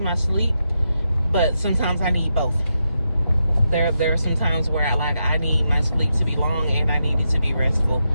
my sleep, but sometimes I need both. There are some times where I need my sleep to be long and I need it to be restful.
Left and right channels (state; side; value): inverted; both; correlation -0.85